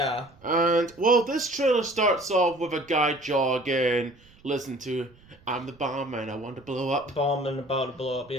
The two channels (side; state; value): right; noise; rumble, 28 dB below the sound